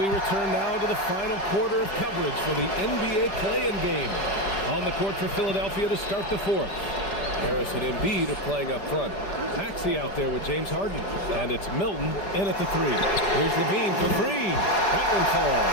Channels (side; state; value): right; late; 5.1 ms